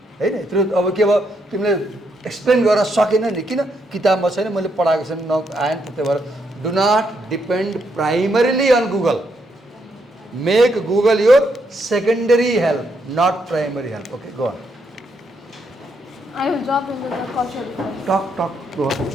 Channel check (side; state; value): both; normal; correlation 0.77